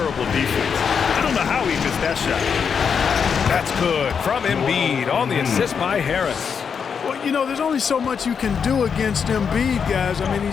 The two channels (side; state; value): right; quieter; 6.6 dB